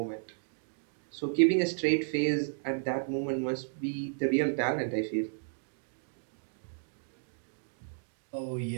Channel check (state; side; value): silent; left; digital silence